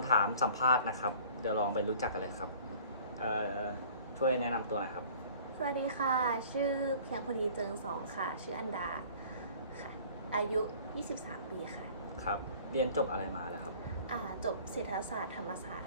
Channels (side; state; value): both; inverted; correlation -0.49